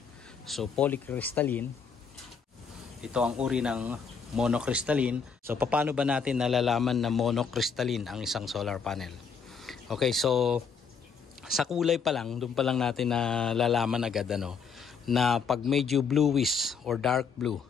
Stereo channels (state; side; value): quieter; right; 5.9 dB